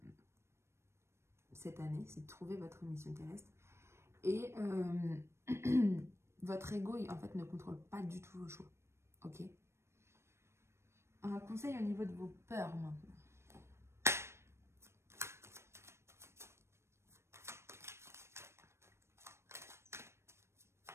cette année, c'est de trouver votre mission terrestre. Et votre ego, en fait, ne contrôle pas du tout vos choix. Ok? Un conseil au niveau de vos peurs maintenant.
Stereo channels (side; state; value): left; late; 0.13 ms